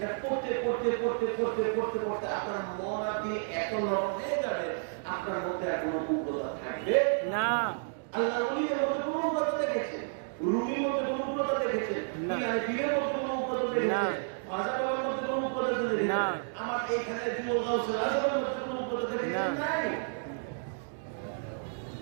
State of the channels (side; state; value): left; silent; digital silence